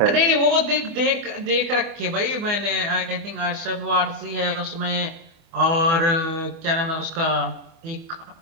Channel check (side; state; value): left; late; 25 ms